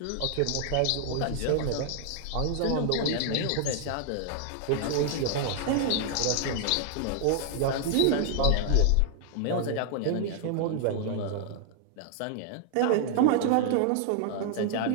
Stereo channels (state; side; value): different; both; correlation 0.00